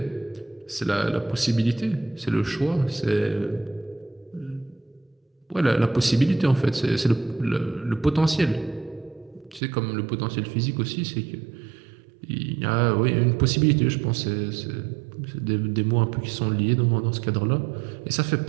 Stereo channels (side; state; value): left; drops out; at 9.6 s